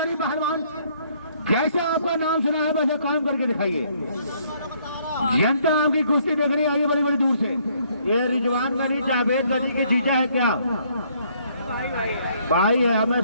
पहलवान, जैसे आपका नाम सुना है वैसे काम करके दिखाइए, जनता आपकी कुश्ती देखने आई है बड़ी बड़ी दूर से। ये रिजवान गनी जावेद गनी के जीजा है क्या? भाई है, हमें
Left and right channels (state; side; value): inverted; both; correlation -0.66